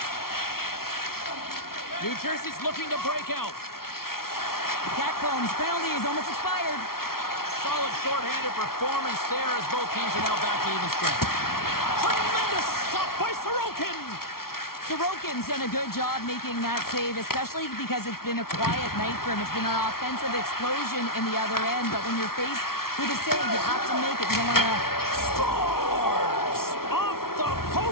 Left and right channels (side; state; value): right; late; 0.94 ms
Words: New Jersey's looking to break out. Catcomb's penalty is almost expired. Solid shorthanded performance there as both teams are now back to even strength. Tremendous stop by Sorokin. Sorokin's done a good job making that save, especially because it's been a quiet night for him. It's been an offensive explosion in the other end, but when you're faced with a save, you have to make it. You don't want to... Scores! Off the